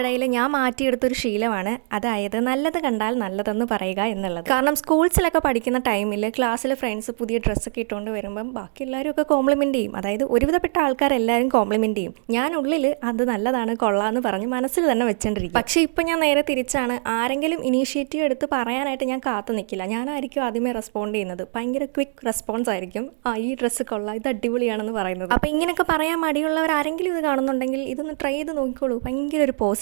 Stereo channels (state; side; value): silent; left; digital silence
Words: ഞാൻ മാറ്റിയെടുത്തൊരു ശീലമാണ്, അതായത് നല്ലത് കണ്ടാൽ നല്ലതെന്ന് പറയുക എന്നുള്ളത്. കാരണം സ്കൂൾസിലൊക്കെ പഠിക്കുന്ന ടൈമിൽ ക്ലാസ്സിൽ ഫ്രണ്ട്സ് പുതിയ ഡ്രസ്സൊക്കെ ഇട്ടുകൊണ്ട് വരുമ്പം ബാക്കി എല്ലാവരും ഒക്കെ കോംപ്ലിമെൻറ്റ് ചെയ്യും. അതായത് ഒരുവിധപ്പെട്ട ആൾക്കാരെല്ലാവരും കോംപ്ലിമെൻറ്റ് ചെയ്യും. ഞാൻ ഉള്ളിൽ അത് നല്ലതാണ് കൊള്ളാമെന്ന് പറഞ്ഞ് മനസ്സിൽ തന്നെ വെച്ചോണ്ടിരിക്കും. പക്ഷേ ഇപ്പം ഞാൻ നേരെ തിരിച്ചാണ്. ആരെങ്കിലും ഇനീഷ്യേറ്റീവ് എടുത്ത് പറയാനായിട്ട് ഞാൻ കാത്തു നിൽക്കില്ല. ഞാനായിരിക്കും ആദ്യമേ റെസ്പോണ്ട് ചെയ്യുന്നത്. ഭയങ്കര ക്വിക്ക് റെസ്പോൺസ് ആയിരിക്കും. ഈ ഡ്രസ്സ് കൊള്ളാം, ഇത് അടിപൊളിയാണെന്ന് പറയുന്നത്. അപ്പോൾ ഇങ്ങനെയൊക്കെ പറയാൻ മടിയുള്ളവർ ആരെങ്കിലും ഇത് കാണുന്നുണ്ടെങ്കിൽ ഇതൊന്ന് ട്രൈ ചെയ്ത് നോക്കിക്കോളൂ. ഭയങ്കര ഒരു